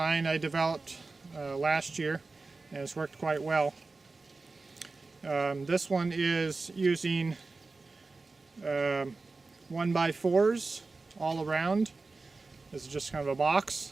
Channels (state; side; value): quieter; left; 3.7 dB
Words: I developed last year, and it's worked quite well. This one is using 1x4s all around. This is just kind of a